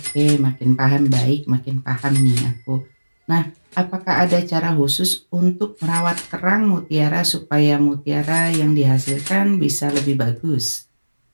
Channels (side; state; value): both; inverted; correlation -1.00